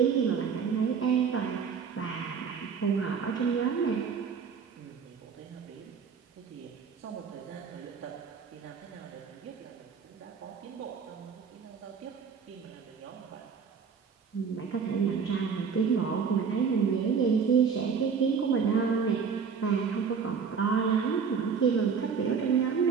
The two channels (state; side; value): quieter; left; 6.2 dB